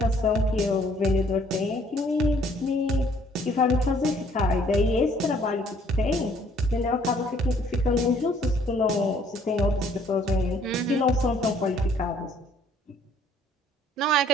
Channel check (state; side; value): normal; both; correlation 0.61